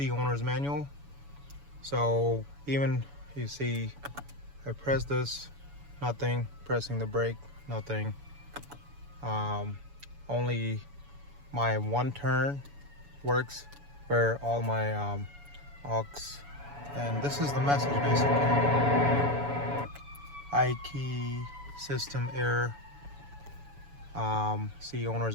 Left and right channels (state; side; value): late; left; 7.0 ms